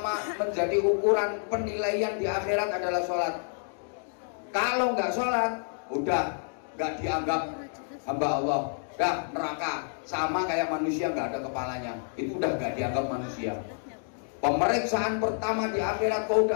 menjadi ukuran penilaian di akhirat adalah sholat. Kalau nggak sholat, udah nggak dianggap hamba Allah. Dah neraka, sama kayak manusia nggak ada kepalanya, itu udah nggak dianggap manusia. Pemeriksaan pertama di akhirat, kau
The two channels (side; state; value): right; silent; 59 dB below the other